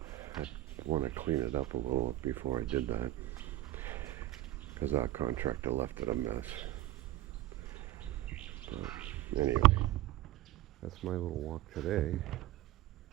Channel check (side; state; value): left; quieter; 15.2 dB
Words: I want to clean it up a little before I did that, because our contractor left it a mess. But anyway, that's my little walk today.